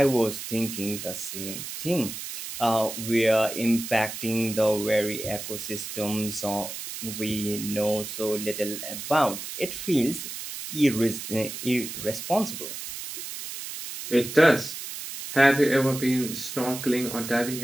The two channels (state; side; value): noise; right; hiss, 8 dB below the sound